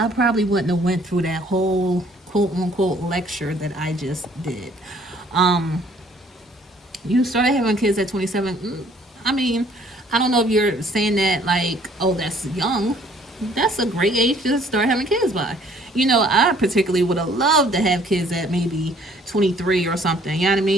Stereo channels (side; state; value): both; normal; correlation 0.59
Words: probably wouldn't have went through that whole quote unquote lecture that I just did. You started having kids at 27. I mean, I don't know if you're saying that like, oh, that's young. That's a great age to start having kids by. I particularly would have loved to have kids at maybe 23 or something. You know what I